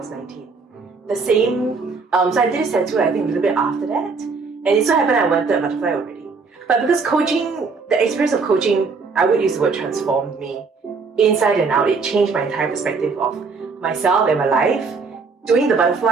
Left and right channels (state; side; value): quieter; left; 4.6 dB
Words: 19. The same, so I did a tattoo I think a little bit after that. And it so happened I wanted a butterfly already. But because coaching, the experience of coaching, I would use the word transformed me inside and out. It changed my entire perspective of myself and my life. Doing the